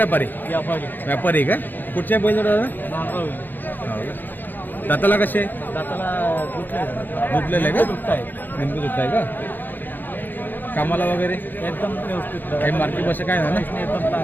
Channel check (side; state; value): right; late; 0.089 ms